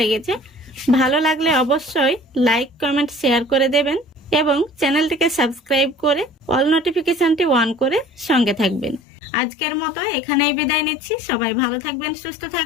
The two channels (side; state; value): right; drops out; at 9.0 s